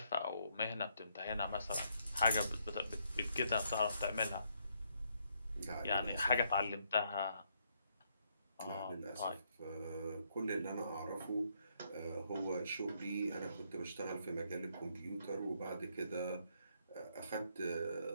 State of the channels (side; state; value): both; inverted; correlation -0.73